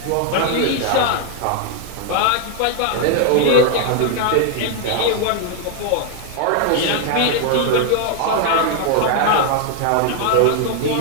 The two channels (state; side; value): different; both; correlation 0.00